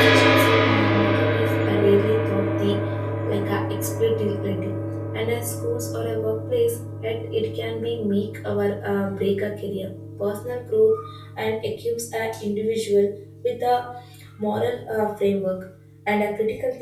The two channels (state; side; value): identical; both; correlation 1.00